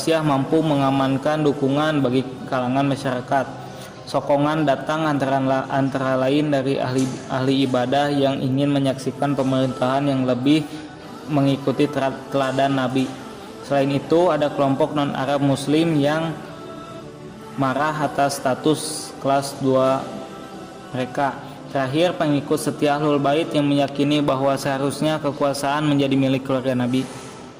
mampu mengamankan dukungan bagi kalangan masyarakat. Sokongan datang antara lain dari ahli ibadah yang ingin menyaksikan pemerintahan yang lebih mengikuti teladan Nabi. Selain itu, ada kelompok non-Arab Muslim yang marah atas status kelas 2 mereka. Terakhir, pengikut setia Ahlul Bait yang meyakini bahwa seharusnya kekuasaan menjadi milik keluarga Nabi.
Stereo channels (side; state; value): both; identical; correlation 1.00